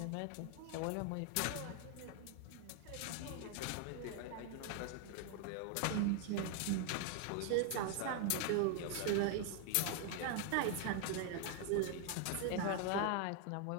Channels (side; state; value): both; different; correlation 0.00